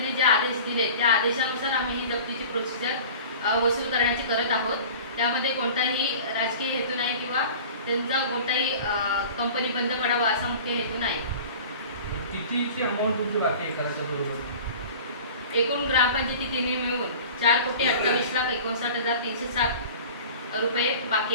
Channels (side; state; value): both; inverted; correlation -0.40